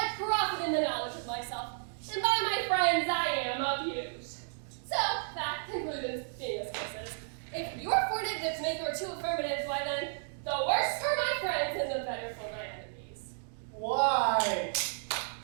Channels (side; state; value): left; silent; digital silence